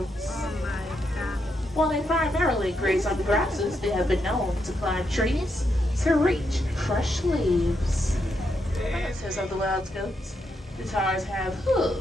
While they primarily graze on grasses, they have been known to climb trees to reach fresh leaves. Relatives of the wild goats, the tars have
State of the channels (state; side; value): normal; both; correlation 0.81